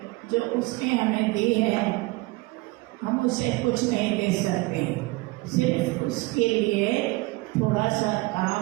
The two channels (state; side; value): quieter; left; 22.7 dB